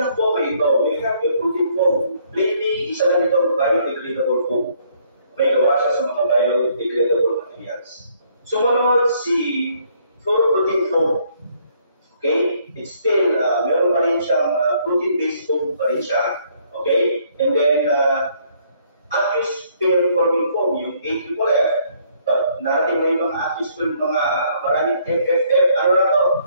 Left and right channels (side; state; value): both; inverted; correlation -0.66